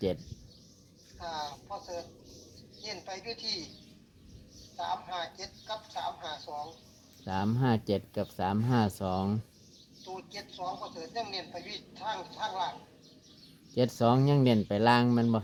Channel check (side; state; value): both; identical; correlation 1.00